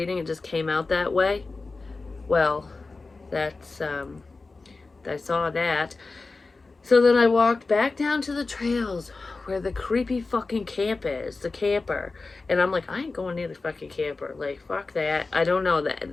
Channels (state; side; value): quieter; right; 3.8 dB